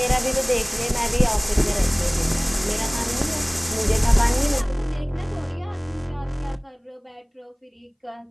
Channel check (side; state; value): both; identical; correlation 1.00